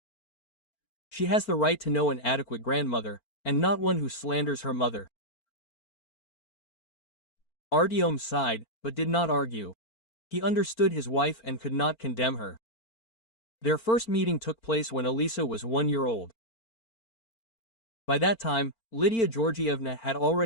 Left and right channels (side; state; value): right; late; 4.4 ms